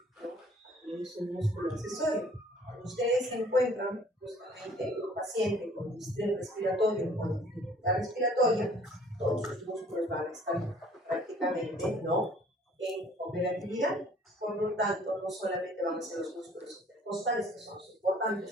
¿no?, es un músculo accesorio. Cuando ustedes encuentran justamente un paciente con distrés respiratorio o con dificultad respiratoria, todos sus músculos van a estar prácticamente, ¿no?, en operatividad. Por lo tanto, no solamente van a ser los músculos intercostales, que son los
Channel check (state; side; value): normal; both; correlation 0.55